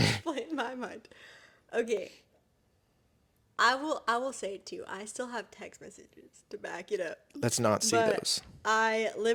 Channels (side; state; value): both; identical; correlation 1.00